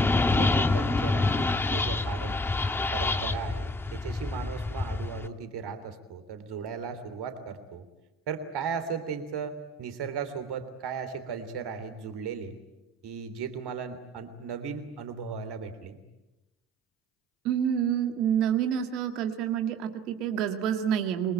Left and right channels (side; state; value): both; normal; correlation 0.51